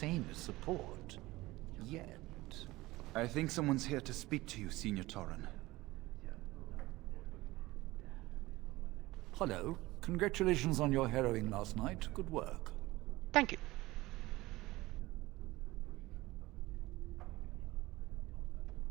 as support. Yet. I think someone's here to speak to you, Senior Torren. Hello. Congratulations on your harrowing last night. Good work. Thank you.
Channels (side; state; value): left; quieter; 19.3 dB